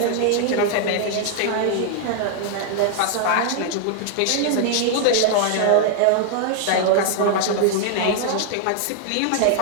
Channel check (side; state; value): both; different; correlation 0.00